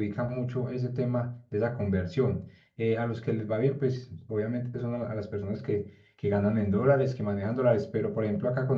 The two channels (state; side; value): identical; both; correlation 1.00